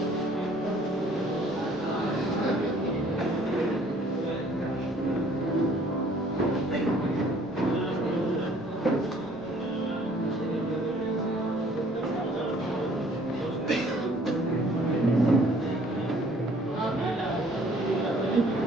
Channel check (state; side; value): noise; left; rumble, 29 dB below the sound